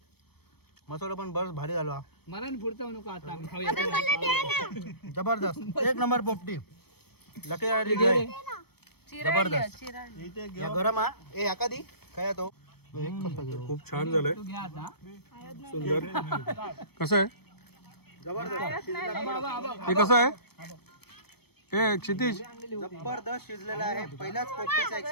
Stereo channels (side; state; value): right; late; 0.97 ms